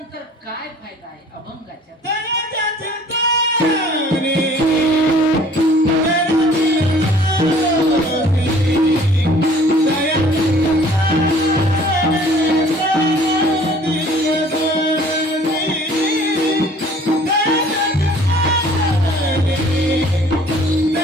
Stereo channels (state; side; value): normal; both; correlation 0.53